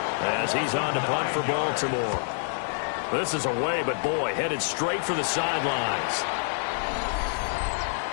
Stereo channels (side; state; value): right; silent; digital silence